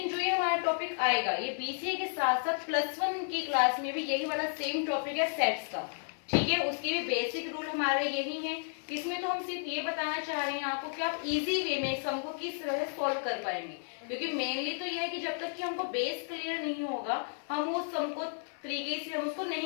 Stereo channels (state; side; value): silent; right; 55 dB below the other